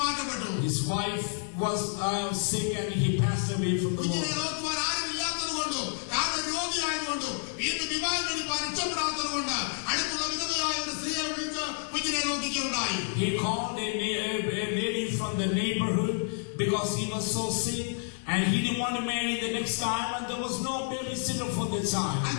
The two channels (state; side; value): silent; right; 58 dB below the other